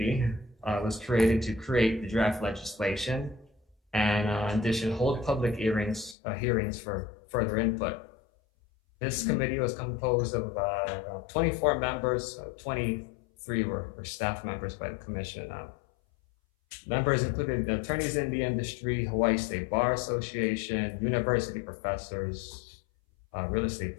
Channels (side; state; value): right; drops out; at 6.2 s